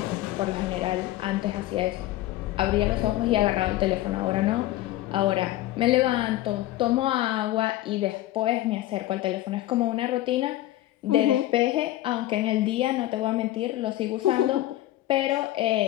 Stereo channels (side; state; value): right; quieter; 15.4 dB